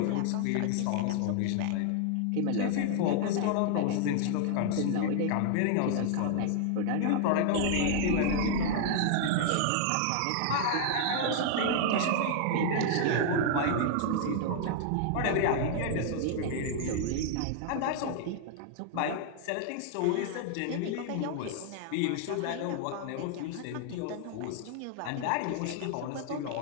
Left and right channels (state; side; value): different; both; correlation 0.00